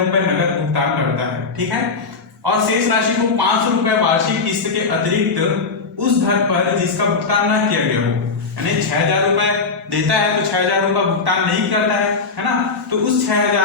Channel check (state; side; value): quieter; right; 4.4 dB